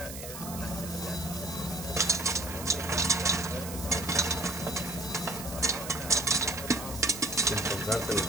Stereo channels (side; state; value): right; noise; hiss, 10 dB below the sound